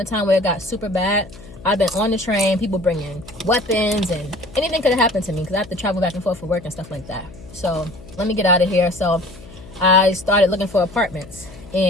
time where it got super bad, I've been on the train, people bringing weapons, and anything could have happened to me because I have to travel back and forth for work and stuff like that. So let me get out of here. So I started looking for apartments.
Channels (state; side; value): noise; left; hum, 19 dB below the sound